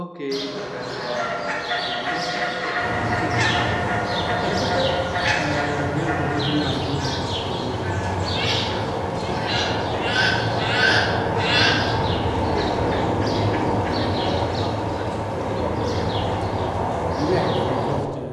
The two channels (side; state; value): both; identical; correlation 1.00